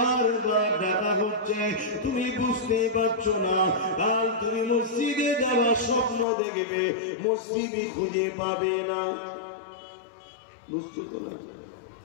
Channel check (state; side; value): drops out; right; at 6.2 s